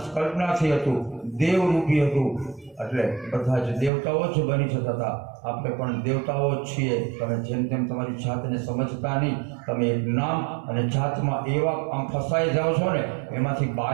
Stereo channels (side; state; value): left; drops out; at 3.9 s